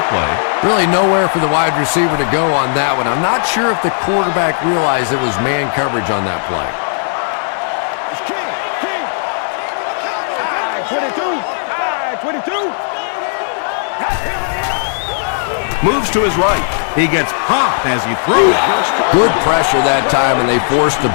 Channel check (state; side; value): silent; right; digital silence